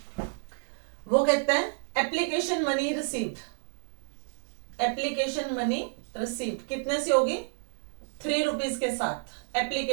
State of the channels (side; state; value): left; silent; digital silence